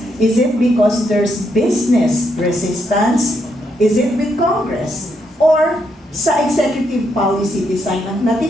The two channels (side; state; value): both; normal; correlation 0.78